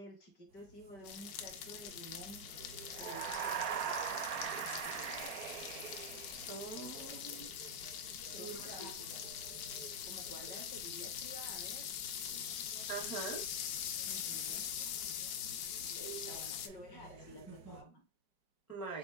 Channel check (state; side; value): late; right; 5.5 ms